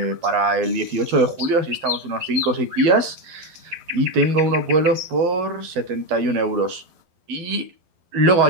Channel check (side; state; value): left; late; 12 ms